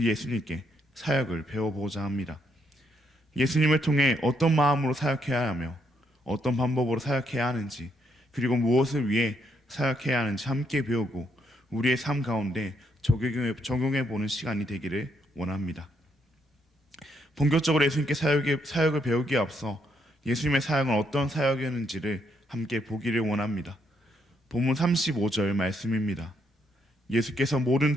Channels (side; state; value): both; normal; correlation 0.75